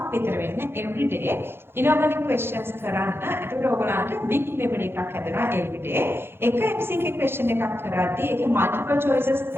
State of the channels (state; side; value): late; left; 0.11 ms